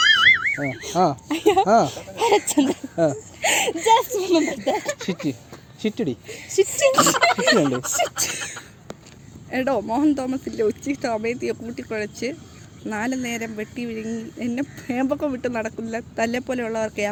എടോ, മോഹൻ തോമസിന്റെ ഉച്ചിഷ്ടം അമേദിയെ കൂട്ടിക്കുഴച്ച് 4 നേരം വെട്ടി വിഴുങ്ങി എന്നെ ഏമ്പക്കം വിട്ട് നടക്കില്ല തല്ലെ പോലെയുള്ളവർക്ക് ആ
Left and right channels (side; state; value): both; identical; correlation 1.00